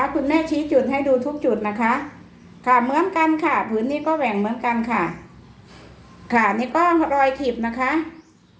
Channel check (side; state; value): both; identical; correlation 1.00